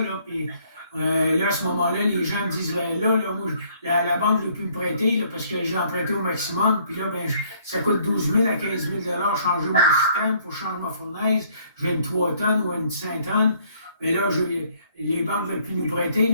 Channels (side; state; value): both; inverted; correlation -0.64